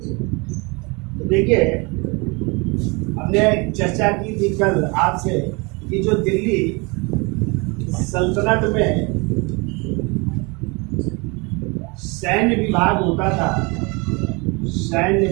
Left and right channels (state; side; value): quieter; left; 28.6 dB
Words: तो देखिए हमने चर्चा की थी कल आपसे कि जो दिल्ली सल्तनत में सैन्य विभाग होता था, सैन्य